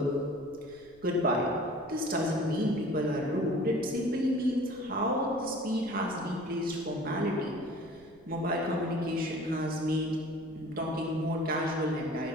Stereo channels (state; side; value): noise; left; rumble, 27 dB below the sound